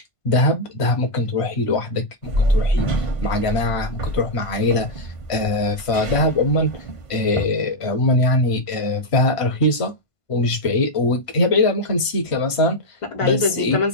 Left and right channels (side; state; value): right; late; 1.5 ms